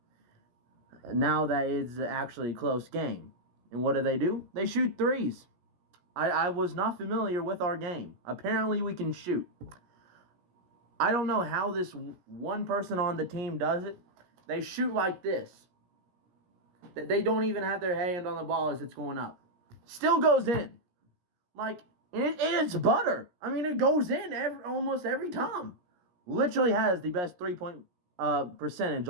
now that it's actually a close game? And what do? They shoot threes. I was not familiar with our game. Apparently, we can shoot. I don't know how this one person on the team does it. They shoot like this. They don't even have their hand on the ball as it's going up. Still goes in. It's butter. I mean, it goes in almost every time. Literally has the best 3-point percentage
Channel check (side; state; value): left; late; 17 ms